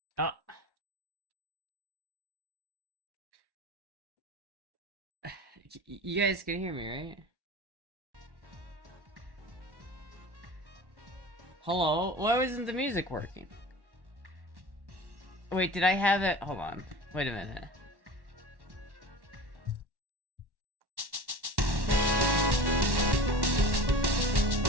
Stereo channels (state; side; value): late; left; 1.1 ms